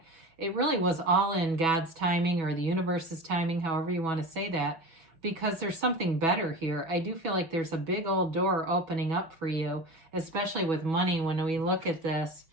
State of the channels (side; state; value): left; late; 6.2 ms